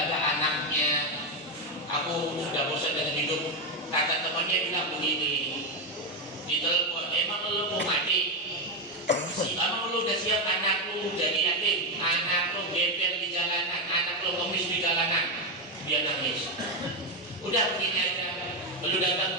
anaknya. Aku sudah bosan dengan hidup. Kata temannya bilang begini di telepon, emang lu mau mati? Emang lu udah siap anak lu jadi yatim, anak lu gembel di jalanan, anak lu ngemis di jalanan? Dia nangis. Udah begini aja, lu datang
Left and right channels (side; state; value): both; normal; correlation 0.08